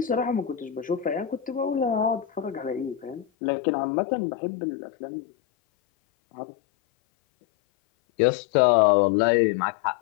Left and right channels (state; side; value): drops out; right; at 3.2 s